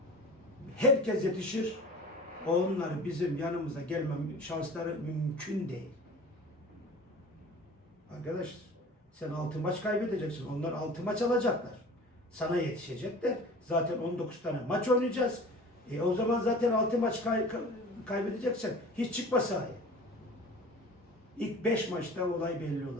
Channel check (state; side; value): normal; both; correlation 0.41